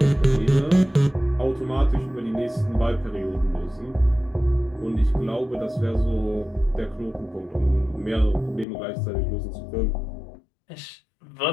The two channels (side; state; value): right; drops out; at 8.7 s